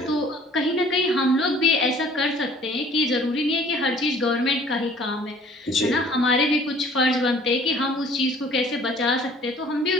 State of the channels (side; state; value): both; normal; correlation 0.53